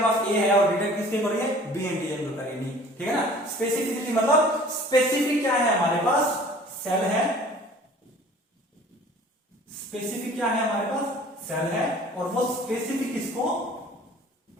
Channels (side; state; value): both; normal; correlation 0.49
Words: पास ए है और डिटेक्ट किसके कर रही है? बी एंटीजन को करेगी। नहीं, ठीक है ना, स्पेसिफिसिटी मतलब स्पेसिफिक क्या है? हमारे पास सेल है, स्पेसिफिक क्या है? हमारे पास सेल है, और वो स्पेसिफिक इसको,